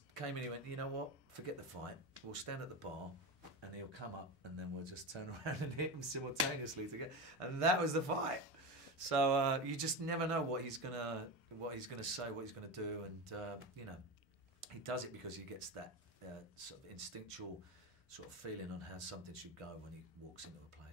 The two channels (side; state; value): both; normal; correlation 0.21